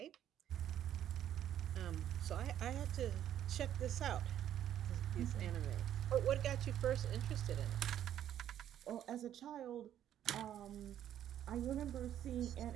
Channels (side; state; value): left; quieter; 10.9 dB